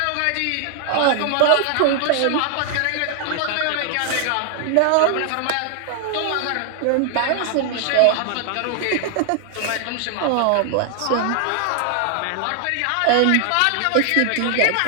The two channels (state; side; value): different; both; correlation 0.00